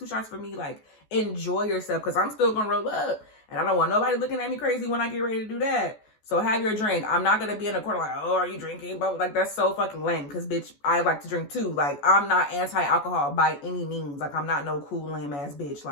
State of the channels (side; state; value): right; late; 14 ms